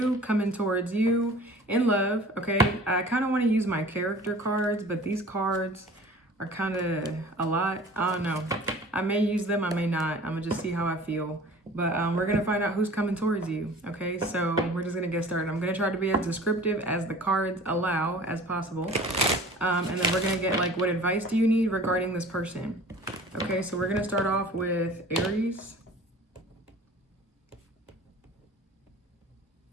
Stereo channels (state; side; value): normal; both; correlation 0.45